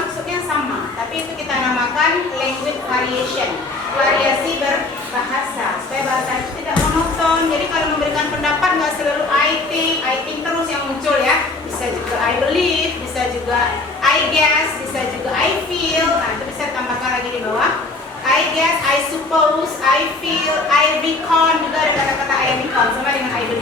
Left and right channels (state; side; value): quieter; right; 3.3 dB